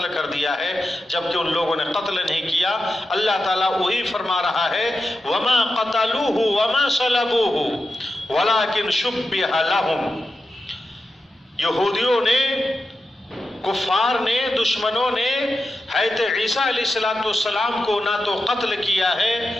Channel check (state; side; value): normal; both; correlation 0.90